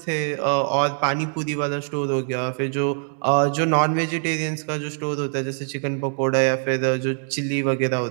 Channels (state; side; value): silent; left; 57 dB below the other